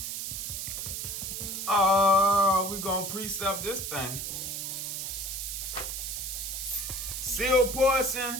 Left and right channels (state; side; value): noise; right; hiss, 4 dB below the sound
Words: Oh, we're gonna precept this thing. Sealed